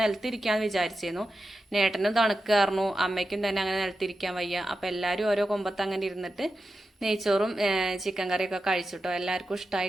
വിചാരിച്ചിരുന്നു. നേട്ടനും തണുക്കായിരുന്നു, അമ്മയ്ക്കും തന്നെ അങ്ങനെ നിലത്തിരിക്കാൻ വയ്യ. അപ്പം എല്ലാവരും ഓരോ കൊമ്പത്ത് അങ്ങനെ ഇരുന്നിട്ട് നെയ്ച്ചോറും ചിക്കൻ കറിയൊക്കെ കഴിച്ചിട്ടോ. എല്ലാവർക്കും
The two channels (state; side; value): normal; both; correlation 0.91